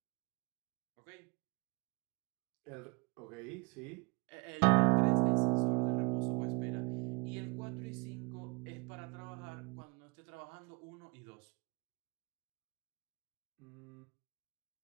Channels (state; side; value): quieter; left; 29.9 dB